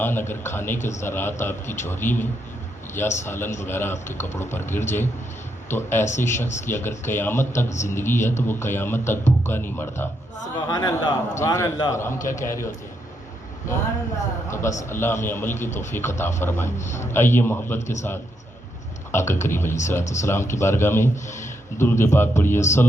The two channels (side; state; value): both; normal; correlation 0.79